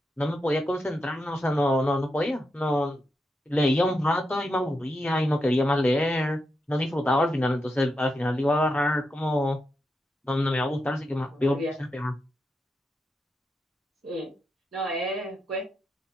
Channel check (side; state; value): both; normal; correlation 0.85